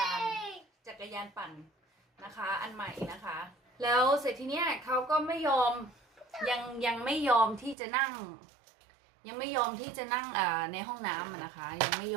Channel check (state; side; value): drops out; left; at 7.8 s